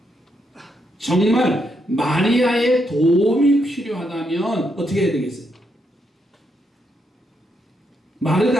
정말 마리아의 도움이 필요하다면 어떻게 해야 되겠어요?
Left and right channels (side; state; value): both; normal; correlation 0.79